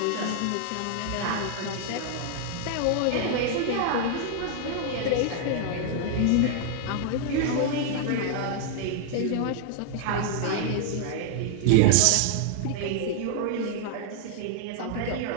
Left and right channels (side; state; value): both; different; correlation -0.01